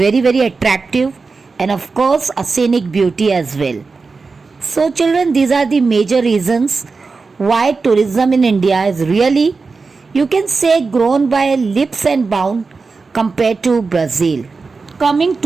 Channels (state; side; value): quieter; left; 4.4 dB